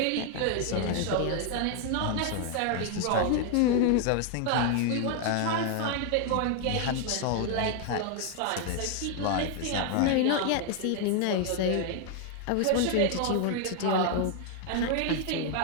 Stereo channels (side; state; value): both; different; correlation 0.00